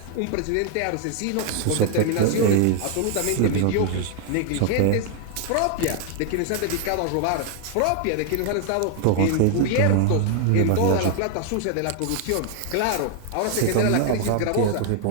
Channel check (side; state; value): both; different; correlation 0.00